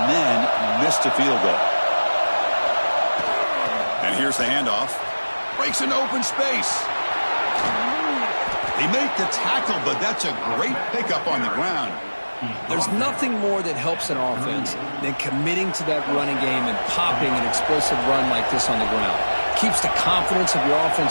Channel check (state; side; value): inverted; both; correlation -1.00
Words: then missed a field goal. And here's the handoff. Breaks into open space. They make the tackle, but that's a great pickup on the ground. There's nothing more that helps an offense than committing to that running game and popping an explosive run like this on the ground. Keeps the confidence of your